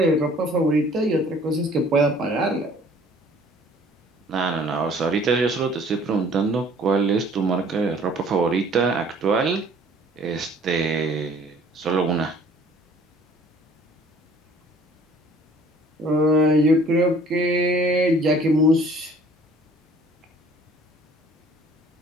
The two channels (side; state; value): both; normal; correlation 0.54